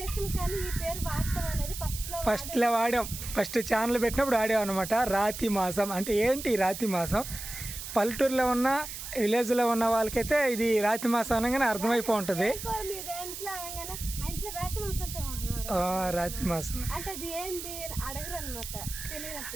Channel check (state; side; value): noise; right; hiss, 9 dB below the sound